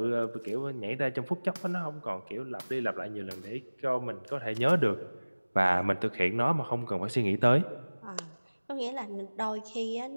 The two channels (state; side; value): inverted; both; correlation -1.00